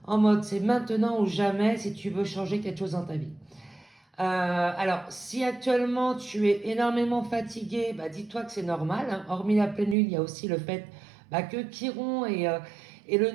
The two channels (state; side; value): drops out; left; at 10.0 s